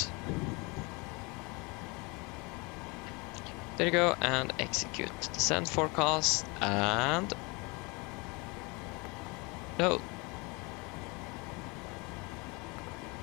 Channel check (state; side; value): quieter; right; 28.0 dB